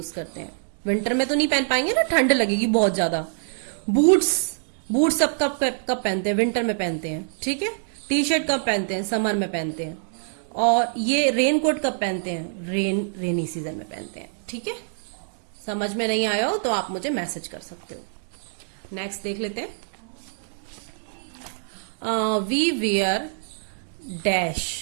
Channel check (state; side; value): silent; left; 62 dB below the other